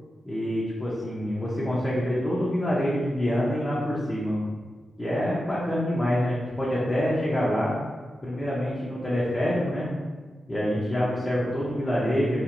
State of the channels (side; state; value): both; normal; correlation 0.91